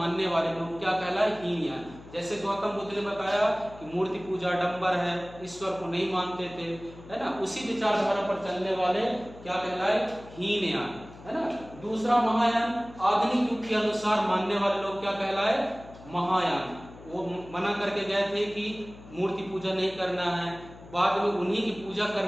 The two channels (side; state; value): left; noise; hum, 18 dB below the sound